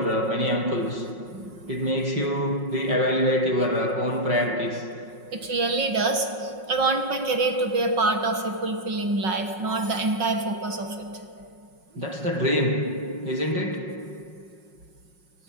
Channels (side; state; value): left; late; 5.5 ms